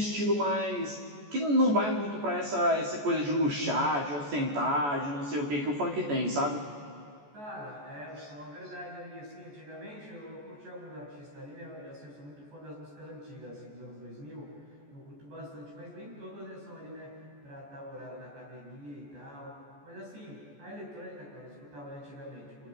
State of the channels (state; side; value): late; left; 14 ms